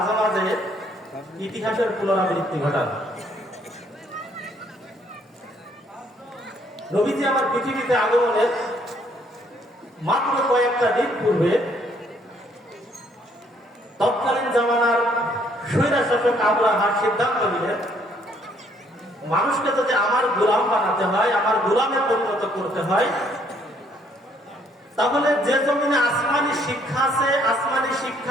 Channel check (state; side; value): normal; both; correlation 0.66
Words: মাঝে ইতিহাসের পুনরাবৃত্তি ঘটান। নবীজি আমার পৃথিবীতে আগমনের মাত্র কয়েকটা দিন পূর্বে তৎকালীন জামানার স্বৈরশাসক আবরাহা সিদ্ধান্ত নিলেন, মানুষকে যদি আমার গোলাম বানাতে হয়, আমার গোলামে পরিণত করতে হয়, তাহলে যে জমিনে আসমানি শিক্ষা আছে, আসমানি